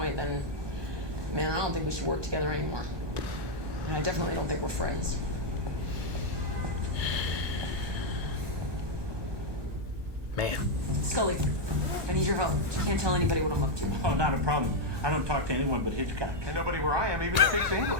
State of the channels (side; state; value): left; late; 1.2 ms